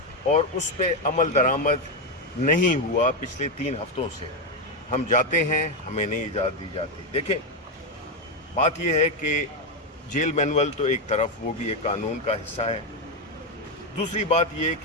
اور اس پہ عمل درآمد نہیں ہوا پچھلے 3 ہفتوں سے. ہم جاتے ہیں، ہمیں نہیں اجازت دی جاتی. دیکھیں بات یہ ہے کہ جیل مینول تو ایک طرف وہ بھی ایک قانون کا حصہ ہے. دوسری بات یہ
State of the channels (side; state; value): both; normal; correlation 0.07